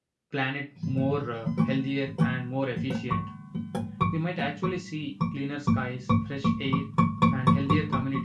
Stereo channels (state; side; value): identical; both; correlation 1.00